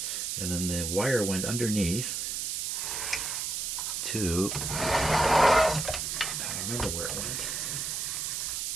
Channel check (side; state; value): right; noise; hiss, 2 dB below the sound